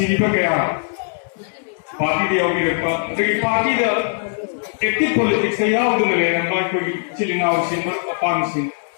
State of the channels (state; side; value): silent; right; digital silence